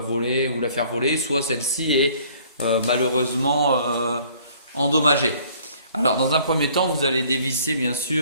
ou la faire voler, soit celle-ci est malheureusement endommagée. Alors, dans un premier temps, vous allez dévisser bien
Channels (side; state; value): both; inverted; correlation -0.56